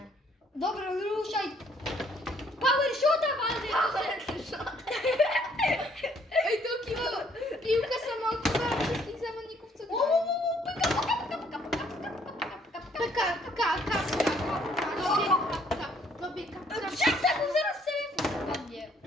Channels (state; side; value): normal; both; correlation 0.65